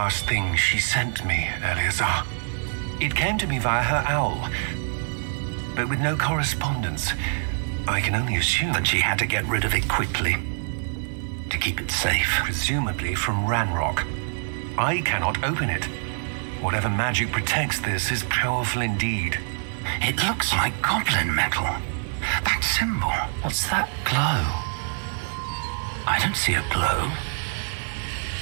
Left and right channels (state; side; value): silent; left; 62 dB below the other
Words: thing she sent me, Eleazar. It came to me via her owl, but with no correspondence. I can only assume That she had to get rid of it quickly to keep it safe. presumably from Ranrock. I cannot open it. Whatever magic protects this is powerful indeed. It looks like goblin metal. That symbol. What's that glow? I don't see a glow.